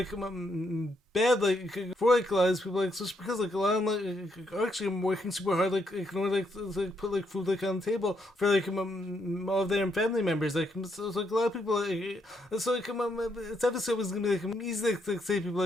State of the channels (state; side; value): normal; both; correlation 0.76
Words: bad for a lot of people, just because a lot of them are actually working super hard in order to put food on the table for all of their family members. So a lot of people so it's obviously always gonna be easy to say